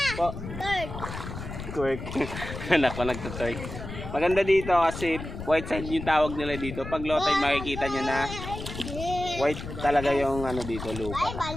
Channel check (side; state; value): left; noise; rumble, 9 dB below the sound